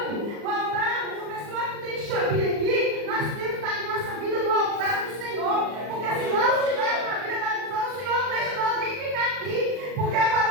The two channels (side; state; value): left; late; 39 ms